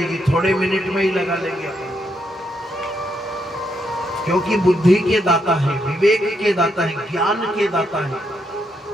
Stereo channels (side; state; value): both; normal; correlation 0.78